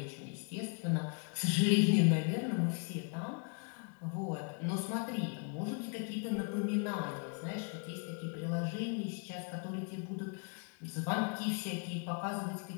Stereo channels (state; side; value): quieter; right; 39.4 dB